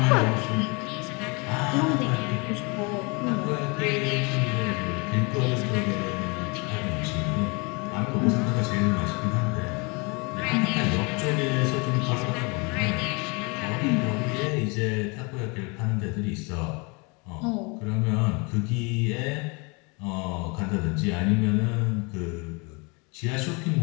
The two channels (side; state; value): right; quieter; 30.1 dB